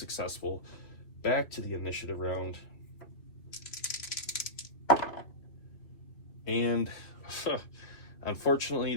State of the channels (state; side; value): late; right; 3.0 ms